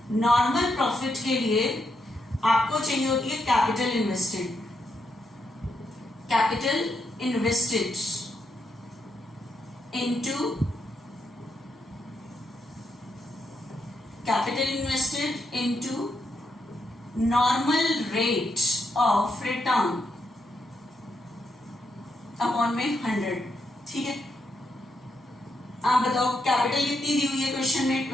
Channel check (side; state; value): both; normal; correlation 0.81